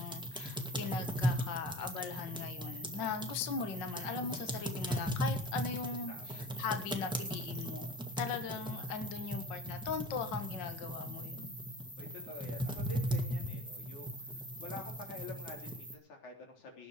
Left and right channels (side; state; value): both; normal; correlation 0.39